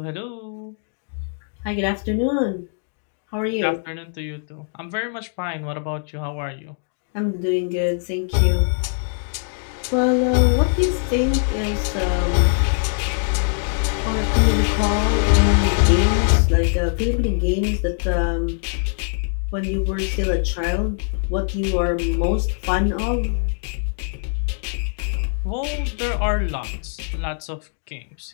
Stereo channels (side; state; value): right; silent; 64 dB below the other